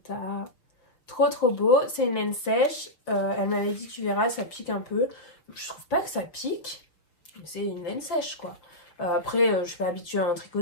Trop beau. C'est une laine sèche. Elle m'avait dit tu verras ça pique un peu. Je trouve pas que ça pique. C'est une laine sèche quoi. Après, je suis pas habituée à en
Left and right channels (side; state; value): right; late; 6.1 ms